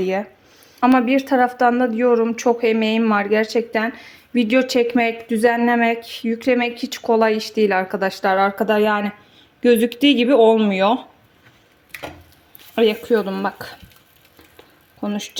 Ama bir taraftan da diyorum çok emeğim var gerçekten. Video çekmek, düzenlemek, yüklemek hiç kolay iş değil arkadaşlar. Arkada yani gözüktüğü gibi olmuyor. Yakıyordum bak.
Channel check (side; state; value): both; identical; correlation 1.00